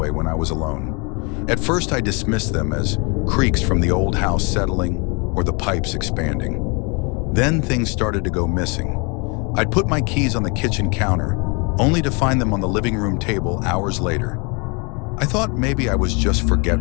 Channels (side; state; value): right; quieter; 31.8 dB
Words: when I was alone. At first, I dismissed them as creaks from the old house settling or the pipes expanding. Then things started to go missing. I'd put my keys on the kitchen counter, only to find them on the living room table hours later. I thought maybe I was just